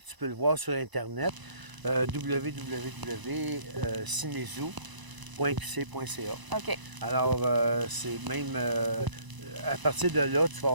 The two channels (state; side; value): late; left; 1.0 ms